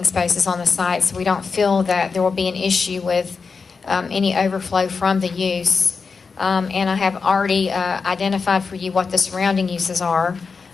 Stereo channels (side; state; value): right; quieter; 5.0 dB